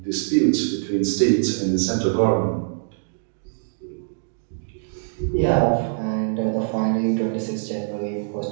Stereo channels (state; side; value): silent; left; digital silence